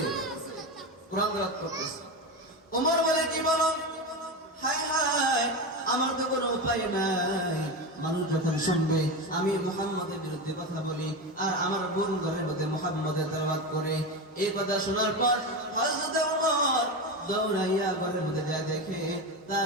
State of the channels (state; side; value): normal; both; correlation 0.19